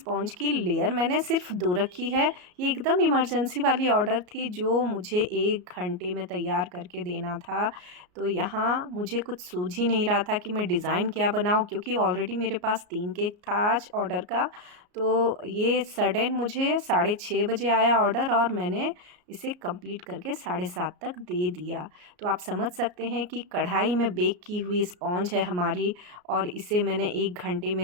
की लेयर मैंने सिर्फ 2 रखी है। ये एकदम इमरजेंसी वाली ऑर्डर थी जो मुझे 1 घंटे में तैयार करके देना था। तो यहाँ मुझे कुछ सूझ ही नहीं रहा था कि मैं डिज़ाइन क्या बनाऊँ, क्योंकि ऑलरेडी मेरे पास 3 केक था आज ऑर्डर का। तो ये सडन मुझे 6:30 बजे आया ऑर्डर और मैंने इसे कंप्लीट करके 7:30 तक दे दिया। तो आप समझ सकते हैं कि कढ़ाई में बेक की हुई स्पॉन्ज है हमारी और इसे मैंने 1 घंटे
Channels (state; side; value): late; left; 33 ms